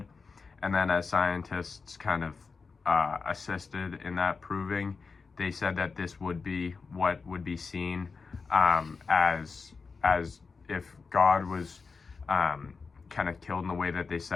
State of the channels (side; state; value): right; quieter; 4.7 dB